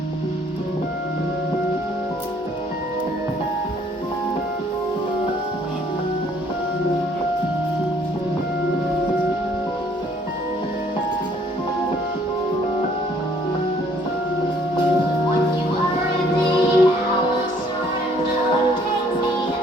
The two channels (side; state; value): both; normal; correlation 0.62